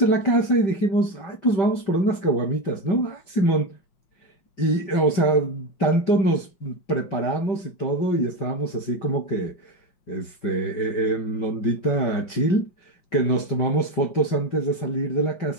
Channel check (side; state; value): right; late; 5.2 ms